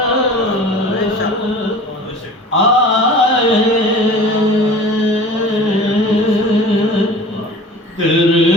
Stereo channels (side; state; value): both; normal; correlation 0.41